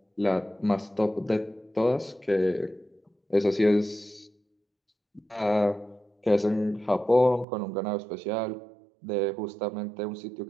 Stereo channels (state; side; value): drops out; left; at 7.5 s